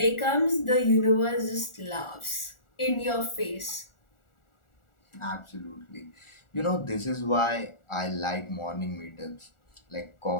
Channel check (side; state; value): right; late; 1.4 ms